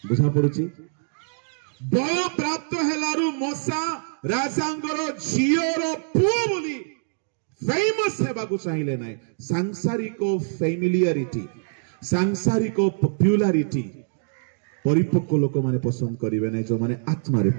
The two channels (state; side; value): silent; left; digital silence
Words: बुझा पड़ुची? बय प्राप्त हेलारु मोसा राजांगर झियोर पुओ बोली फेमस हेबाकु चाहिए ना। सांसारिक फैमिलियरिटी, सांसारिक पॉपुलैरिटी परिपक्व लोक माने पसंद करिवे नै, जो माने आत्मा रे